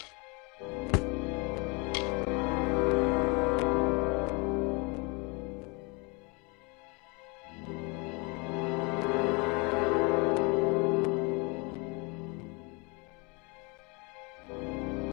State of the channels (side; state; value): right; quieter; 29.9 dB